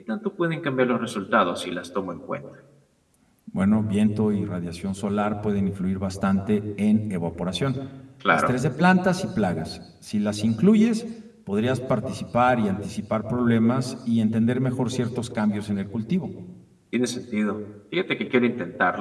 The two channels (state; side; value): identical; both; correlation 1.00